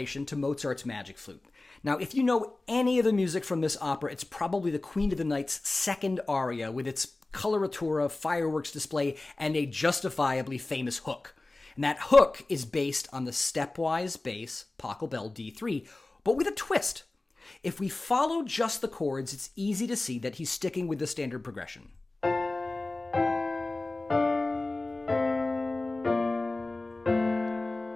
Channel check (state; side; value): quieter; right; 3.0 dB